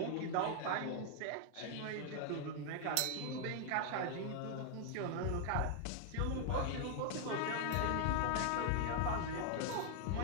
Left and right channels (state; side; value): different; both; correlation 0.00